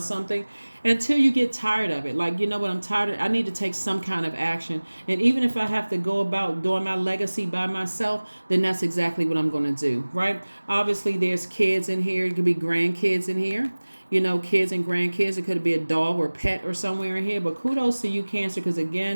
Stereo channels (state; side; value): inverted; both; correlation -1.00